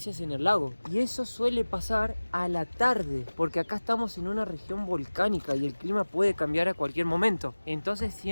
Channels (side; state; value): both; inverted; correlation -1.00